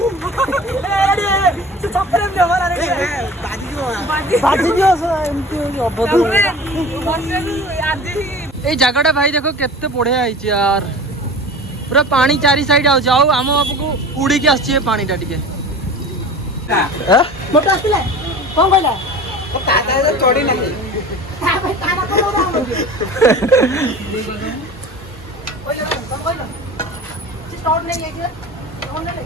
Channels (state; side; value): normal; both; correlation 0.37